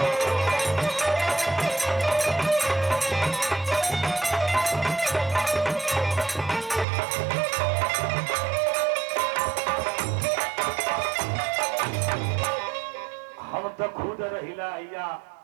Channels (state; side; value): drops out; left; at 6.9 s